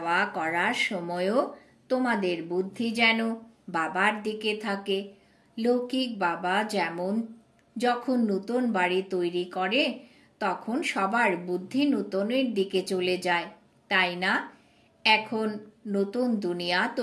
করার সময়ও তোমাদের বুদ্ধি যেন বাবার দিকে থাকে। লৌকিক বাবা যেমন যখন নূতন বাড়ি তৈরি করে তখন সবার বুদ্ধি নূতনের দিকে চলে যায়, তাই না? এখন নতুন দুনিয়া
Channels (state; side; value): identical; both; correlation 1.00